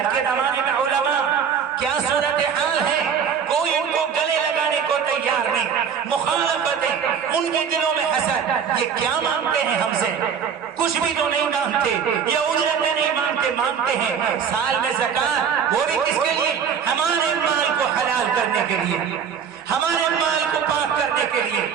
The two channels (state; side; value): quieter; left; 7.4 dB